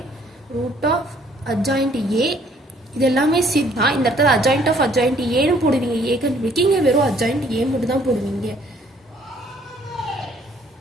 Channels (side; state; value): both; normal; correlation 0.61